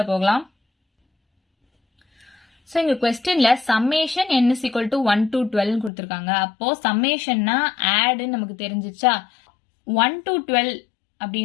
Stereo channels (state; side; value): drops out; right; at 5.9 s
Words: போகலாம். ஸோ இங்கே கொஸ்டினில் summation n is equal to 1 to 12 கொடுத்துருக்காங்க. அப்போது சம்மேஷன்னா ஆடுன்னு நமக்கு தெரிஞ்சிச்சா. 1 to 12